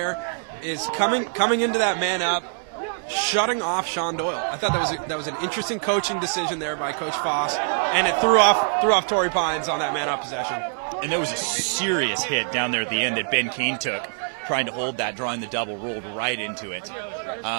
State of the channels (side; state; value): left; silent; digital silence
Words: is coming into that man up, shutting off Sean Doyle. I thought that was an interesting coaching decision there by Coach Foss, and it threw off Torrey Pines on that man up possession. And there was a serious hit down there at the end that Ben Keene took, trying to hold that, drawing the double, rolled right into it.